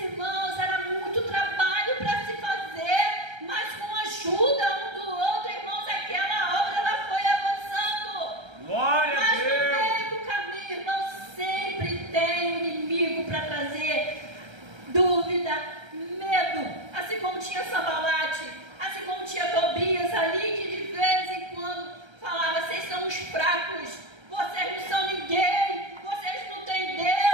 era muito trabalho para se fazer, mas com a ajuda um do outro, irmãos, aquela obra ela foi avançando. Mas no meio do caminho, irmãos, sempre tem um inimigo para trazer dúvida, medo, assim como tinha Sambalate, assim como tinha Tobias ali, que de vez em quando falava: vocês são os fracos, vocês não são ninguém, vocês não têm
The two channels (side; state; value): left; late; 1.3 ms